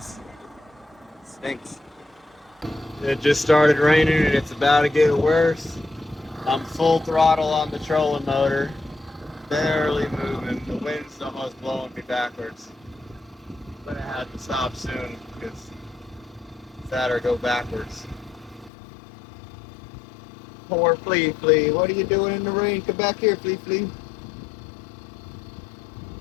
It stinks. It just started raining and it's about to get worse. I'm full throttle on the trolling motor. Barely moving. The wind's almost blowing me backwards. I'm gonna have to stop soon because it's that or go backwards. Poor Flea Flea. What are you doing in the rain? Come back here, Flea Flea.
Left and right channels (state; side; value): drops out; right; at 18.7 s